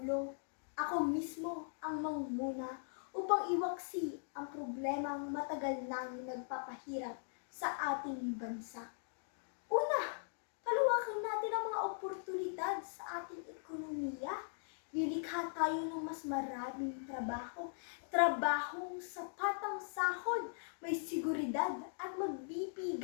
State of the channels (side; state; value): right; silent; digital silence